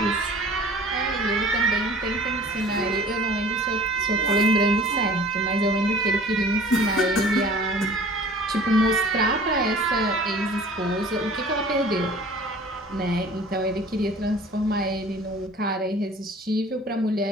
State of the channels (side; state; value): both; normal; correlation 0.46